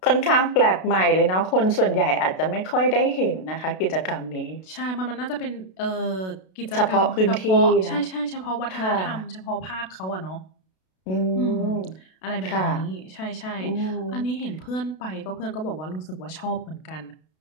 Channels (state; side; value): late; right; 32 ms